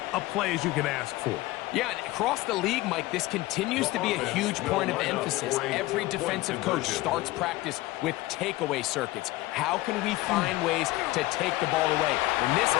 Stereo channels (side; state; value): right; quieter; 18.7 dB